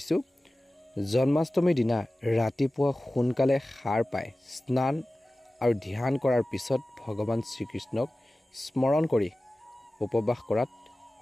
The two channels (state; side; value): normal; both; correlation 0.96